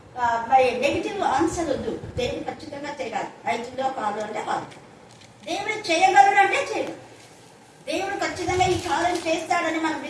మరి నెగిటివ్ ఆన్సర్ వద్దు. దేవుడు ఖచ్చితంగా చేయగలరు. 5లో కాదు అంటే కాదు, దేవుడు చేయగలడు అంటే చేయగలరు. దేవుడు ఖచ్చితంగా ఈ కార్యం చేస్తాడని మనం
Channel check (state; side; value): identical; both; correlation 1.00